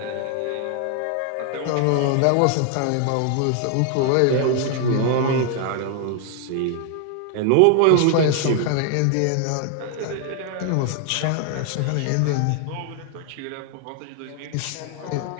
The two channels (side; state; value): both; different; correlation 0.00